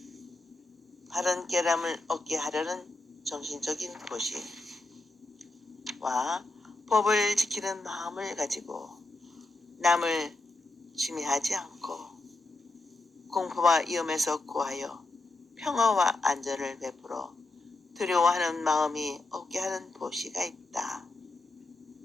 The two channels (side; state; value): right; quieter; 3.1 dB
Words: 바른 깨달음을 얻게 하려는 정신적인 보시와 법을 지키는 마음을 가지고 남을 침해하지 않고 공포와 위험에서 구하여 평화와 안전을 베풀어 두려워하는 마음이 없게 하는 보시가 있다.